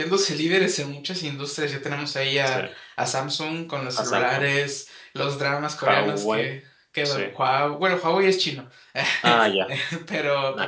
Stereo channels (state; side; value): identical; both; correlation 1.00